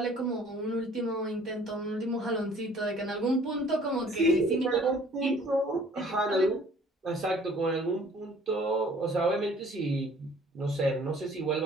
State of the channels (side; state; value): both; normal; correlation 0.54